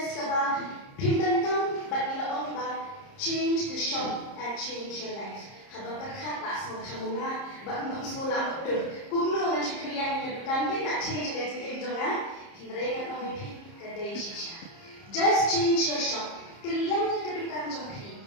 kaba pindah tam, but ilaong ba change the shop and change your life. Habang terkata semua semula, bang semula betul. Kuno dengan syukrian yang kan dia nak change dengan sikit jangan. Hindari kan orang itu kedai shisha. Just change your shop. Keliang kita bukan jompi.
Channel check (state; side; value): late; right; 30 ms